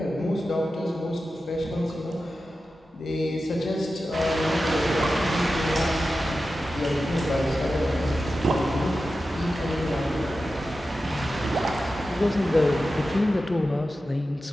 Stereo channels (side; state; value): both; normal; correlation 0.93